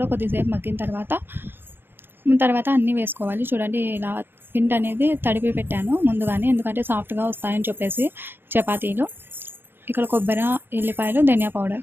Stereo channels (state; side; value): late; left; 0.10 ms